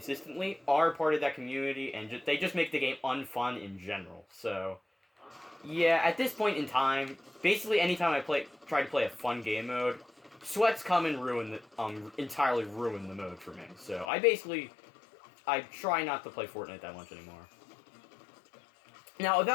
are part of that community, and they just make the game unfun in general. So, yeah, at this point in time, basically anytime I try to play a fun game mode, sweats come and entirely ruin the mode for me. So I try not to play Fortnite that much anymore. Now,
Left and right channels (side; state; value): right; drops out; at 14.1 s